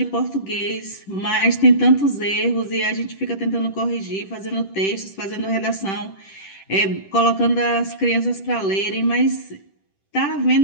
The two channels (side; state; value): right; late; 10 ms